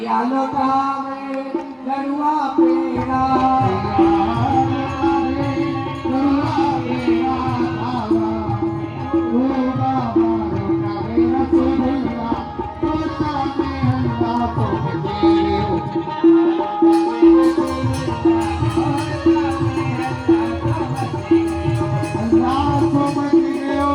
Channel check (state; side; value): identical; both; correlation 1.00